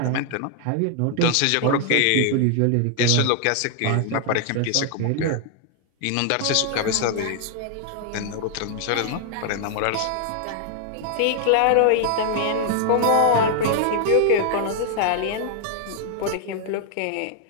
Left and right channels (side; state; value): both; different; correlation 0.00